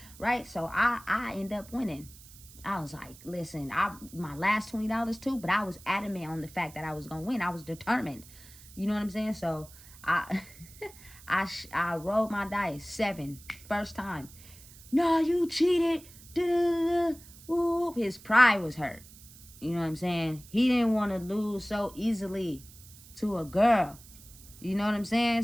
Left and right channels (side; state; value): right; noise; hiss, 20 dB below the sound